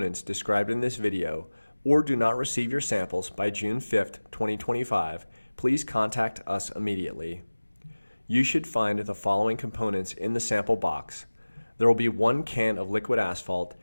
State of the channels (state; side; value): inverted; both; correlation -1.00